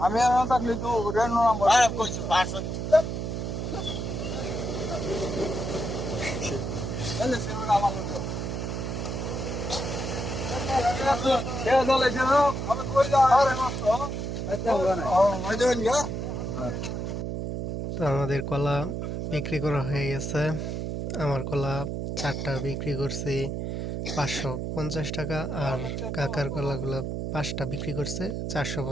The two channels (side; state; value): right; noise; hum, 3 dB below the sound